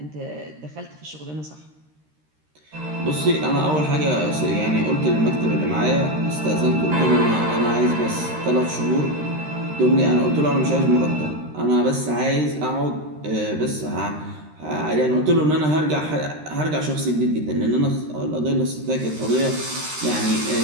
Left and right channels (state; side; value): late; left; 13 ms